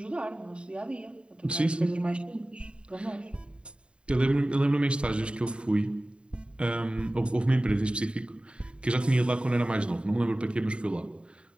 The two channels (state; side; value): late; left; 0.054 ms